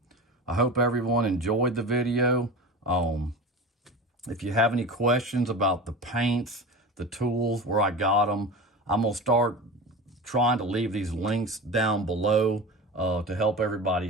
I hope everyone enjoyed the video. If you have any questions about the paints, the tools, where I got them, I'm gonna start trying to leave these links down below to help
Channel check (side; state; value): both; normal; correlation 0.31